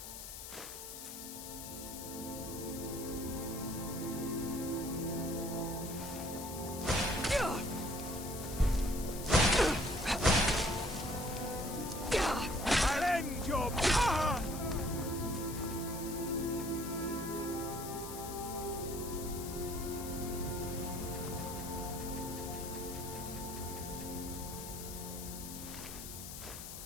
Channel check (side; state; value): left; noise; hiss, 10 dB below the sound